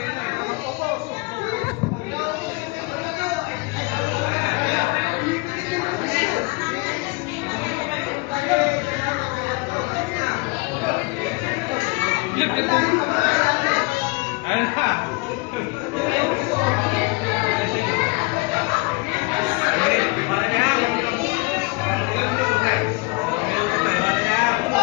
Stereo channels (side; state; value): right; quieter; 27.4 dB